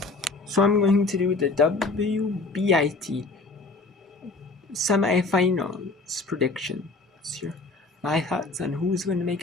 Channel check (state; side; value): quieter; right; 3.5 dB